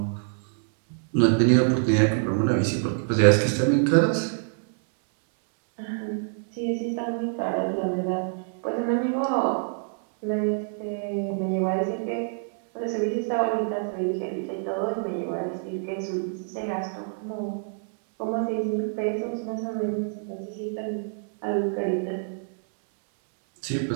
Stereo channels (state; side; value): silent; left; 61 dB below the other